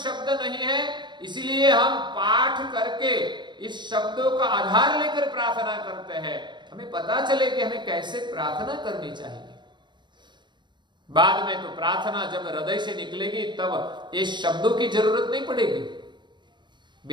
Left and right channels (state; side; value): late; left; 0.22 ms